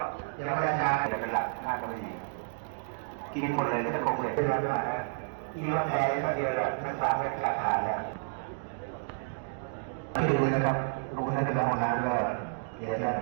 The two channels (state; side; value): silent; left; digital silence